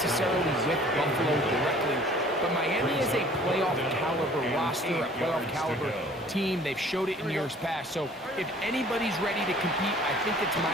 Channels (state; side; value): normal; both; correlation 0.52